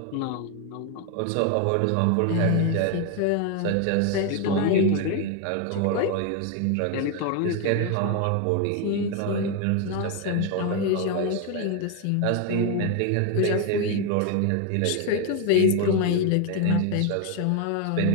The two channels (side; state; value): both; different; correlation 0.01